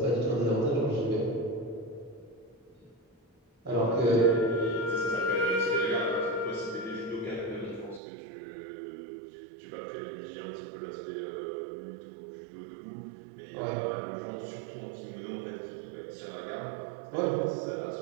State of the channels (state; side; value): drops out; left; at 8.0 s